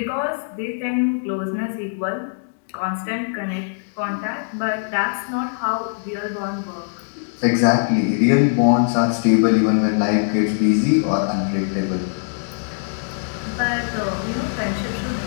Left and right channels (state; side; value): silent; right; 65 dB below the other